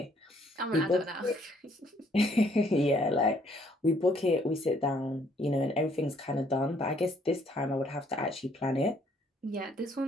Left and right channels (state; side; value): normal; both; correlation 0.65